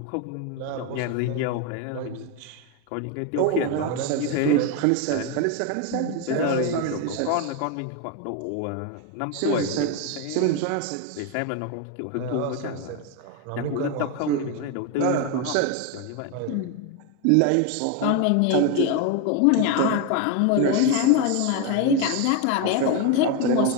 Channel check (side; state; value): both; different; correlation 0.02